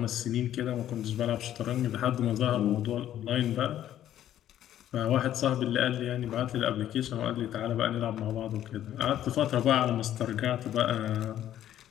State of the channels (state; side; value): quieter; right; 11.7 dB